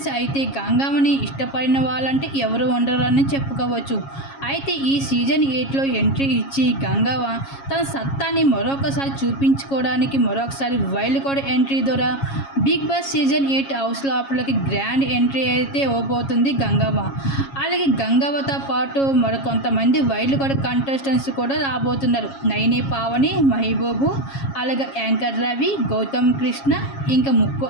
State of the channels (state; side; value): late; right; 7.3 ms